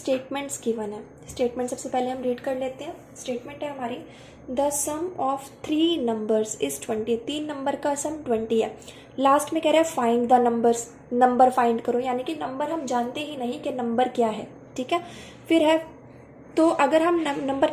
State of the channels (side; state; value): both; identical; correlation 1.00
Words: गिवन है। स्टेटमेंट सबसे पहले हम रीड कर लेते हैं। स्टेटमेंट है हमारी, the sum of 3 numbers is 20। 3 नंबर का सम 20 है। लास्ट में कह रहा है find the numbers, number find करो, यानी कि नंबर हम जानते ही नहीं कि नंबर क्या है। ठीक है, फिर है, तो अगर हम नंबर